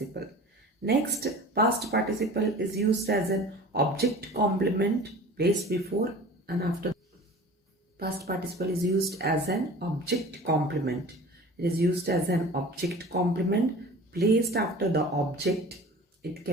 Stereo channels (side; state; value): both; normal; correlation 0.41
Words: Next, past participle is used as an object complement placed before and after. Past participle is used as an object complement. It is used as an object complement placed after the object. It